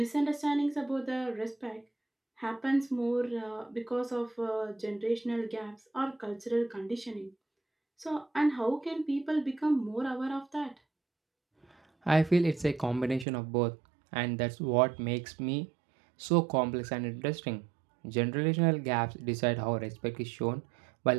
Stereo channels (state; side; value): drops out; left; at 13.2 s